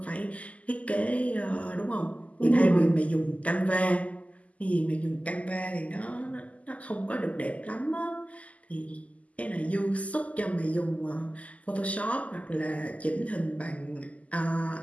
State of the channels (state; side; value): late; right; 0.070 ms